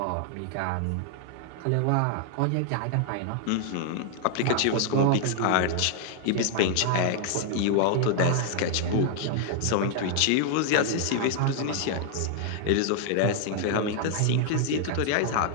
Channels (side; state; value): both; different; correlation 0.00